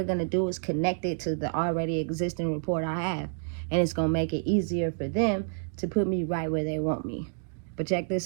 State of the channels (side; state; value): left; silent; 59 dB below the other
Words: going to do is connect it to the already existing report I have, and it's going to make it easier for them to put me right where they want me. But check